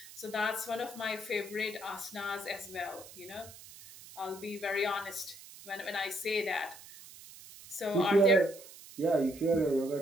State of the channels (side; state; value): right; noise; hiss, 17 dB below the sound